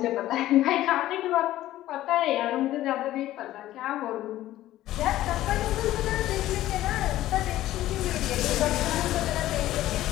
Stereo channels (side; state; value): right; quieter; 14.5 dB